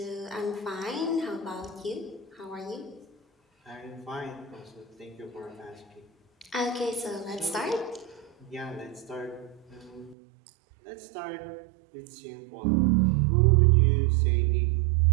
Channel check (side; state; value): left; drops out; at 10.2 s